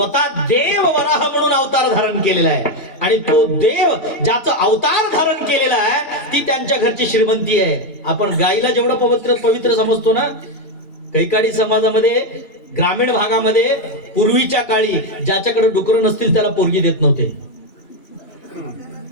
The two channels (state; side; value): late; right; 2.6 ms